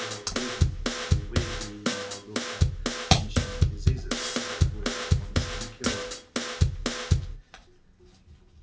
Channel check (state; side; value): identical; both; correlation 1.00